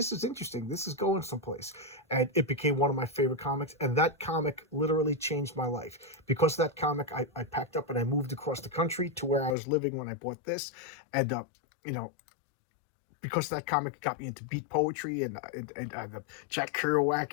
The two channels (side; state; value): right; drops out; at 9.6 s